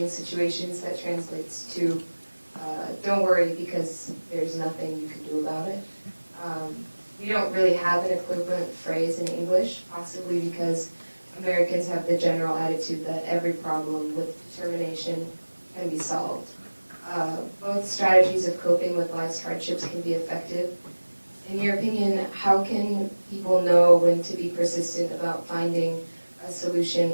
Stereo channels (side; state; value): both; inverted; correlation -1.00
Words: situations that translates to don't worry because there's nothing you can do about it. We don't really have an equivalent phrase in English, possibly because Americans have the general attitude that every problem with determination can be solved. Both strategies of coping with life's hardships can be effective. In your opinion, how can people know when to be persistent about finding a